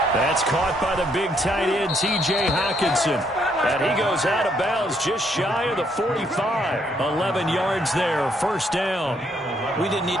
That's caught by the big tight end, T.J. Hockenson. And he goes out of bounds just shy of the 45. 11 yards there, 1st down. We didn't need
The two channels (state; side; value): normal; both; correlation 0.72